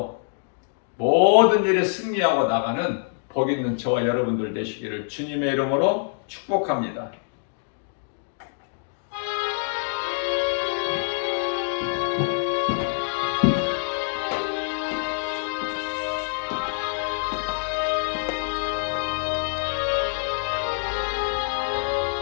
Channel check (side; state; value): right; silent; digital silence